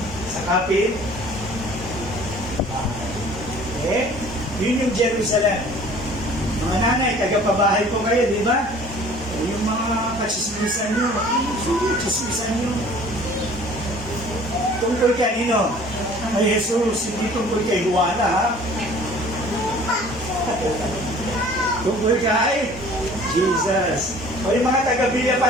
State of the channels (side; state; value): both; normal; correlation 0.50